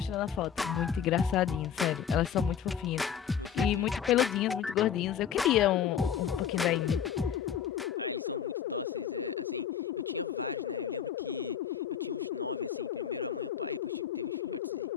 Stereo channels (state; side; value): quieter; right; 8.4 dB